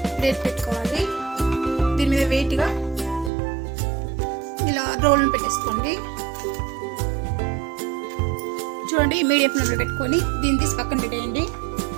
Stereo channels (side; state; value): left; drops out; at 3.3 s